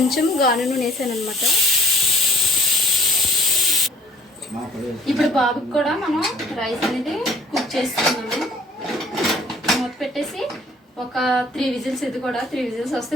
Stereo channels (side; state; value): both; normal; correlation 0.55